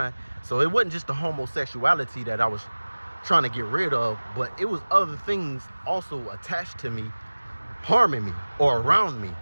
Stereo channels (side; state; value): both; inverted; correlation -1.00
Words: So it wasn't just the homosexuality that I was trying to get rid of, but it was other things also attached to me, harming me or around me